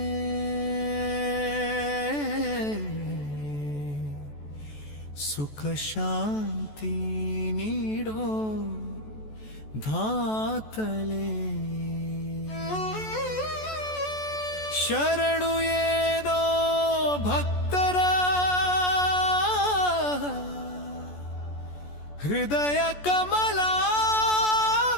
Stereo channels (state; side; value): late; right; 14 ms